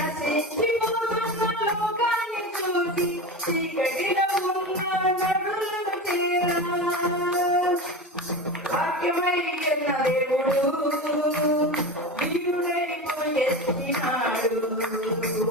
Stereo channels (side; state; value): both; normal; correlation 0.25